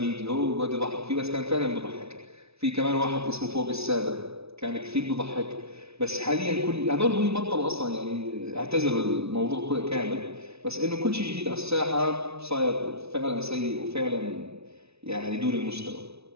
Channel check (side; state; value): left; late; 0.79 ms